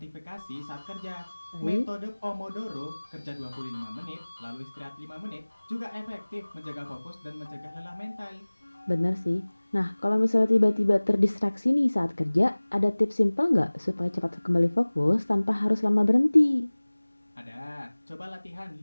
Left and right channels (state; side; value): inverted; both; correlation -1.00